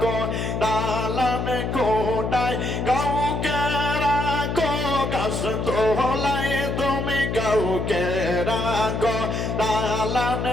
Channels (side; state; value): left; noise; hum, 2 dB below the sound